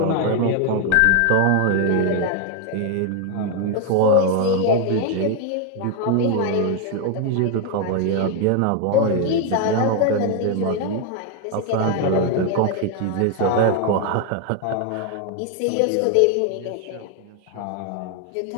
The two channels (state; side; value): different; both; correlation 0.01